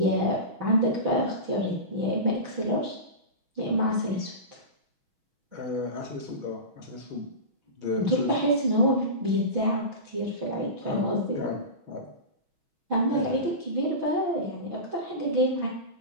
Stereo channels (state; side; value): late; left; 6.2 ms